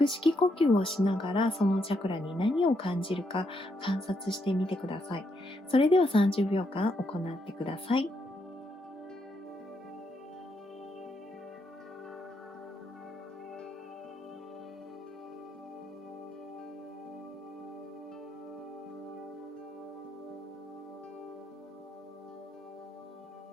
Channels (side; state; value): both; normal; correlation 0.78